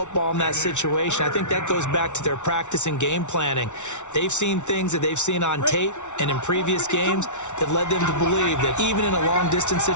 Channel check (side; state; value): right; late; 0.84 ms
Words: in that situation. I think that goes back to their practice and game planning. They've seen things that they've seen on tape and in previous games that led them to believe that even in a long-distance